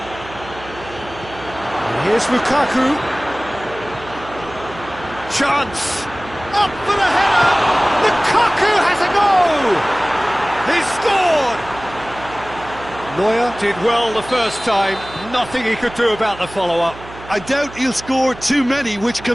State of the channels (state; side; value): noise; right; hum, 16 dB below the sound